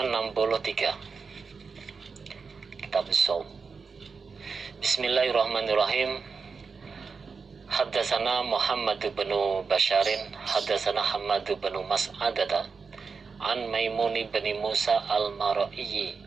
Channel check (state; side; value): quieter; left; 5.1 dB